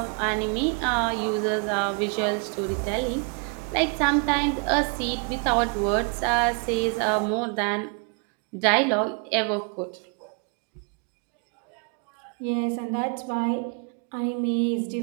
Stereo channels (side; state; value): left; quieter; 38.0 dB